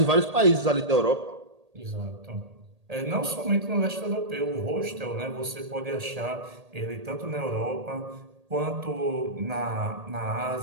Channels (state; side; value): late; left; 1.8 ms